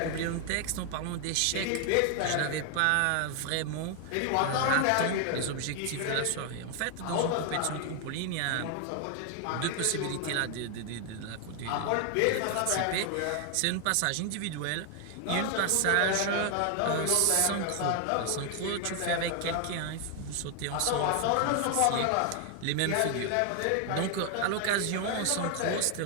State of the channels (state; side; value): different; both; correlation 0.00